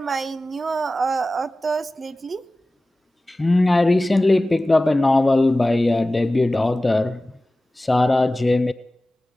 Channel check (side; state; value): both; normal; correlation 0.97